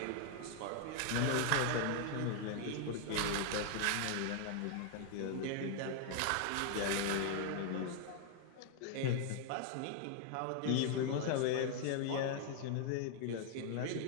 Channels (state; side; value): different; both; correlation 0.00